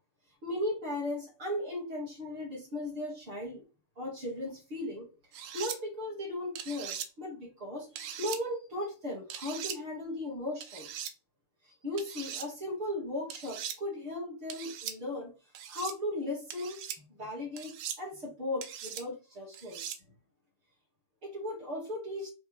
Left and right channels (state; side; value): late; left; 6.8 ms